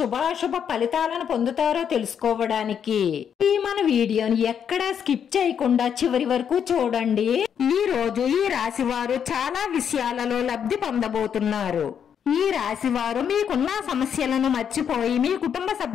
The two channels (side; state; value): right; quieter; 8.1 dB